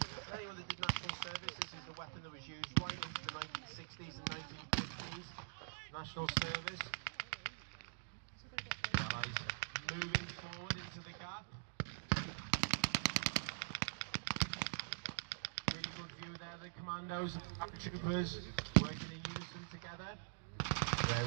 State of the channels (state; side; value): silent; left; digital silence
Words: on the national service, this is the weapon that was used right into the 1960s and 1950s. National service. The Allies moving forward into the gap. Really good view there, the commandos and the troopers working in unison together.